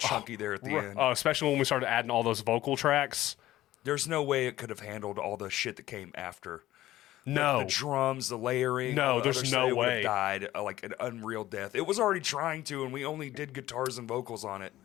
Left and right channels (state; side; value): quieter; right; 15.0 dB